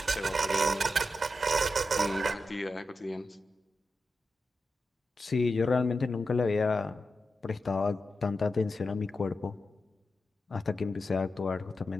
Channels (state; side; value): normal; both; correlation 0.89